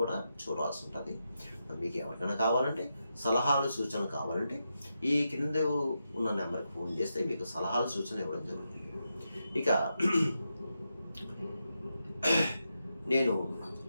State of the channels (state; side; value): inverted; both; correlation -0.86